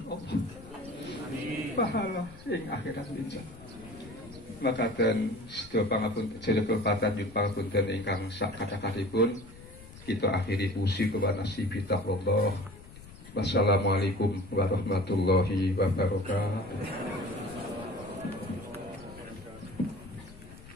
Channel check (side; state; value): left; noise; rumble, 18 dB below the sound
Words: Allah. Pahala ing akhirat linjang. Makaten sedaya pangapunten jenengan patanjut pangapunten ingkang sak kathah-kathahipun kita akhiri pusi kewana sibi taqwallah. Wassalamualaikum warahmatullahi wabarakatuh.